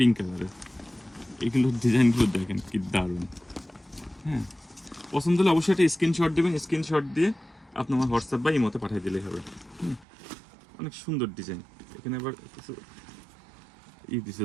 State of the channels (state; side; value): drops out; left; at 10.1 s